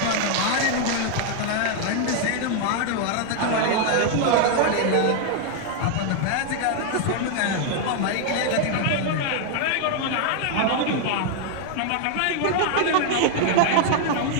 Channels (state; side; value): different; both; correlation 0.00